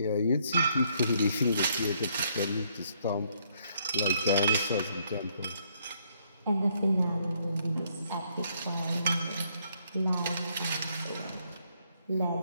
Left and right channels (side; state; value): both; inverted; correlation -0.70